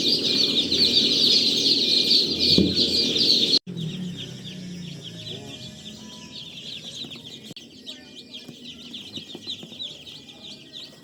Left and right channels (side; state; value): both; identical; correlation 1.00